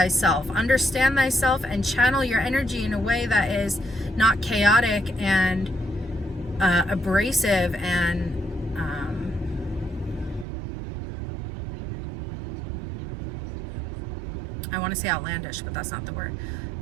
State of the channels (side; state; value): left; drops out; at 10.5 s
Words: understand thyself, and channel your energy in a way that is not chaotic and abrasive and I want to say outlandish, but that's not the word.